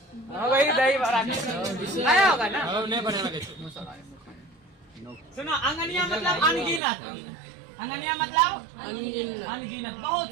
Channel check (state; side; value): drops out; left; at 6.8 s